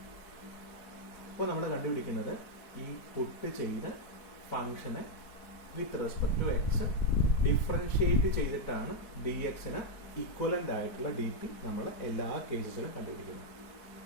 അപ്പോൾ നമ്മൾ കണ്ടുപിടിക്കുന്നത് ഈ പുട്ട് ചെയ്ത ഫംഗ്ഷനെ with respect to X differentiate ചെയ്തിട്ടാണ് ഡി എക്സിന് ഇക്വലന്റ് ആയിട്ടുള്ള ഡി പി നമ്മൾ എല്ലാ കേസസിലും കണ്ടുപിടിക്കുന്നത്.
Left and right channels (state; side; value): late; right; 4.6 ms